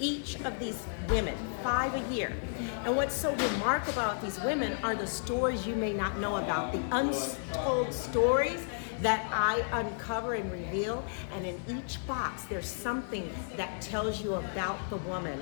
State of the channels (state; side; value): silent; right; 56 dB below the other